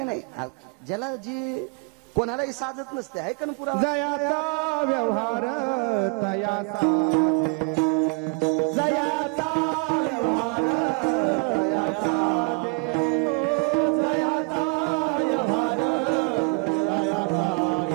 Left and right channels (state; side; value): quieter; left; 34.8 dB